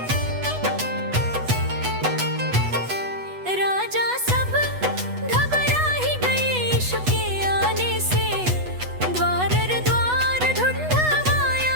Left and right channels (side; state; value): left; late; 8.1 ms